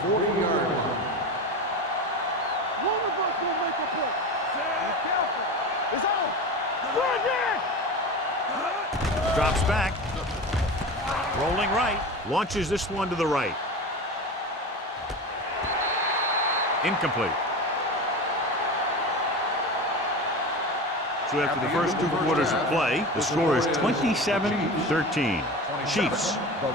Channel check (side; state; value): both; normal; correlation 0.28